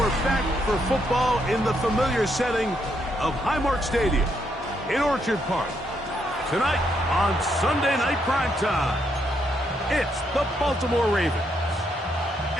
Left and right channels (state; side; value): normal; both; correlation 0.76